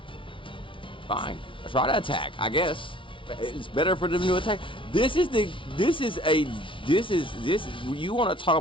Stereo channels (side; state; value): right; late; 0.25 ms